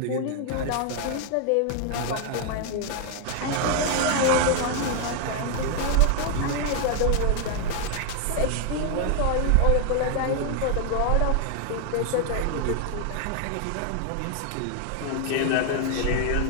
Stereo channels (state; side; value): different; both; correlation 0.00